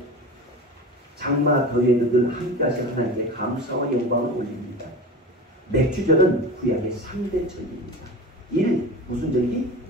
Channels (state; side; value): normal; both; correlation 0.32